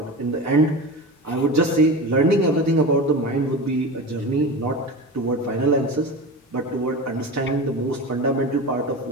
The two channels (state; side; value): normal; both; correlation 0.28